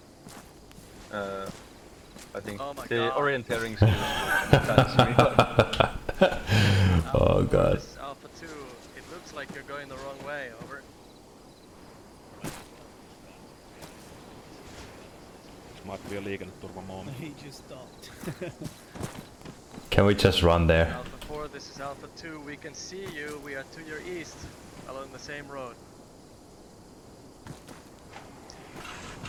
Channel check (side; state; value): both; identical; correlation 1.00